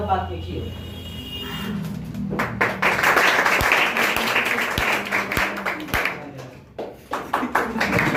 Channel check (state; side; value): identical; both; correlation 1.00